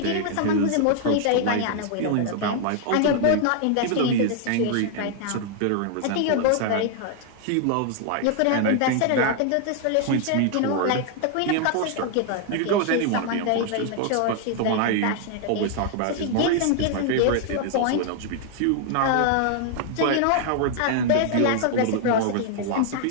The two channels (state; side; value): different; both; correlation 0.00